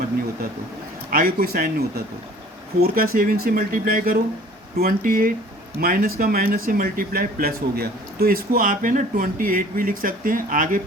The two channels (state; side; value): normal; both; correlation 0.50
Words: नहीं होता तो, आगे कोई साइन नहीं होता तो। 4 का 7 से मल्टीप्लाई करो 28, माइनस का माइनस से मल्टीप्लाई प्लस हो गया। तो इसको आप है ना 28 भी लिख सकते हैं, आगे